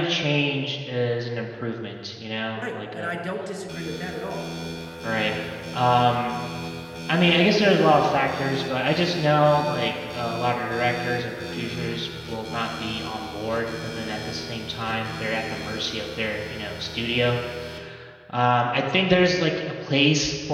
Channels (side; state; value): both; identical; correlation 1.00